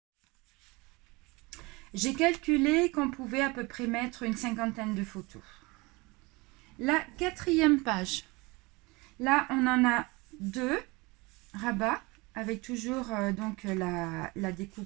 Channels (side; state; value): left; quieter; 24.8 dB